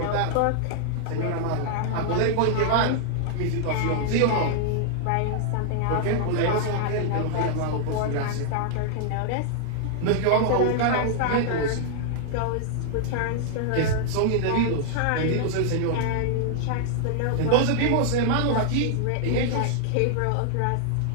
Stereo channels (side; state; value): both; different; correlation -0.01